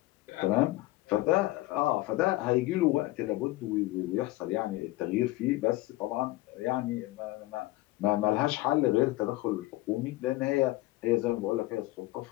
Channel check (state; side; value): quieter; right; 18.6 dB